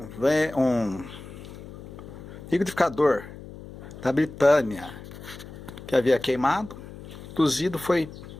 liquidificador da Britânia que havia queimado. Cozido foi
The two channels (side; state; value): left; noise; hum, 14 dB below the sound